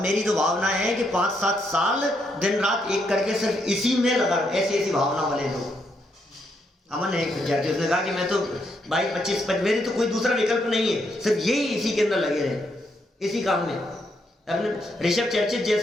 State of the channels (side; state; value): both; normal; correlation 0.77